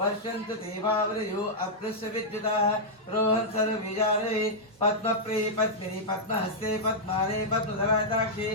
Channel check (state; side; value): normal; both; correlation -0.07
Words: ते भावृयो अप्लुष्य विद्युताः रोहन् सर्वविजारे पद्मप्रिये पद्मिनि पद्महस्ते पद्माने पद्मधराताक्षे